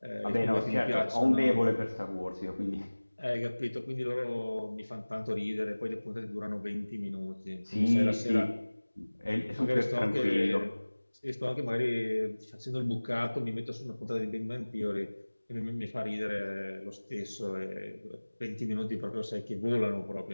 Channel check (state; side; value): inverted; both; correlation -1.00